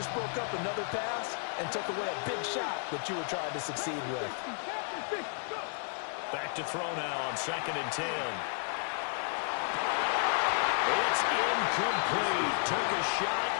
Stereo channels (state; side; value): silent; right; 56 dB below the other